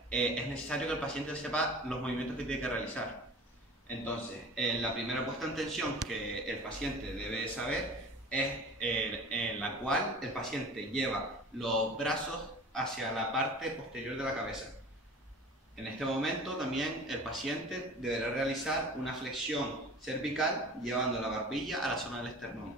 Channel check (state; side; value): normal; both; correlation 0.40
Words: es necesario que el paciente sepa los movimientos que tiene que realizar. Entonces, la primera puesta en tensión que el paciente debe saber es en la cual el paciente lleva los brazos hacia la parte posterior de la cabeza. En este momento también el paciente deberá realizar una flexión cervical llevando la barbilla a la zona del esternón.